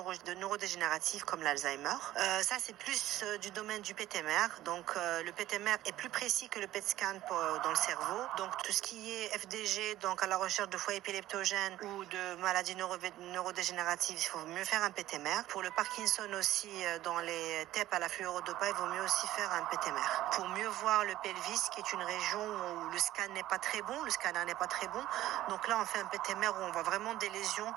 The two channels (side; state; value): left; quieter; 14.6 dB